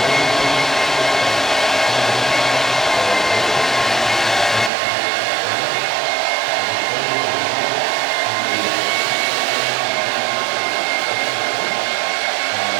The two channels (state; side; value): drops out; left; at 4.7 s